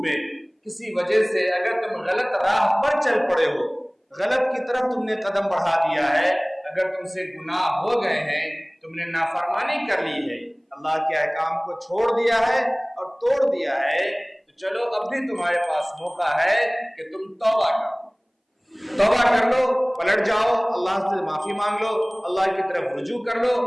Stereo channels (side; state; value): both; identical; correlation 1.00